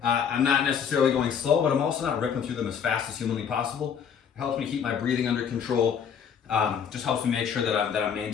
I'm not necessarily going slow, but I'm also not ripping through them as fast as humanly possible. It helps me keep my breathing under control. Just helps me make sure that I'm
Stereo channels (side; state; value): right; quieter; 7.5 dB